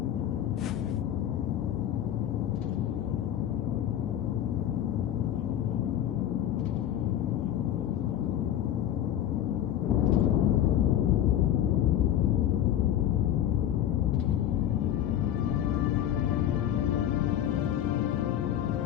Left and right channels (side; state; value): right; quieter; 11.1 dB